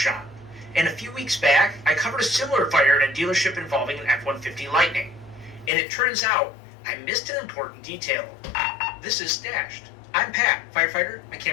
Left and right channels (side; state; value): right; drops out; at 5.7 s